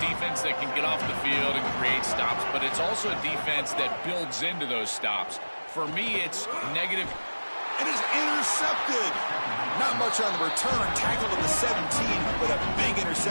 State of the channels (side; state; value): both; inverted; correlation -1.00